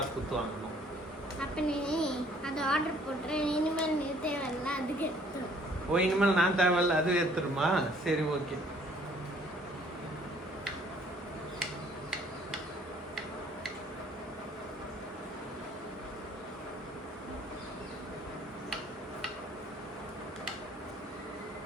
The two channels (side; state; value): both; normal; correlation 0.59